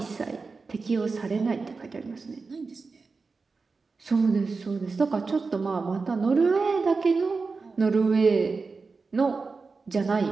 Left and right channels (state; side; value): quieter; left; 4.3 dB